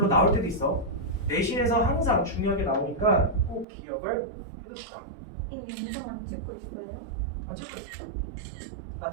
나올 때도 있어. 내신에서 항상 중요하게 나오니까 꼭 기억을 해두시다. 이 영상 안 찍고 있어요? 안 찍고 있어. 나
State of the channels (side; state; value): left; drops out; at 3.7 s